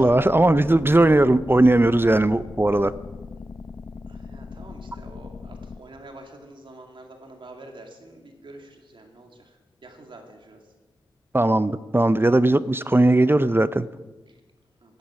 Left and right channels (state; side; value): normal; both; correlation 0.93